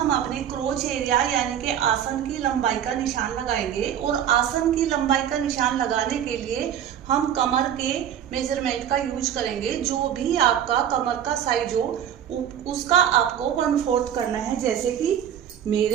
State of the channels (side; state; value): left; quieter; 9.7 dB